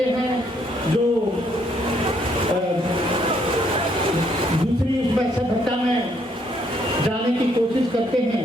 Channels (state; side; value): normal; both; correlation 0.70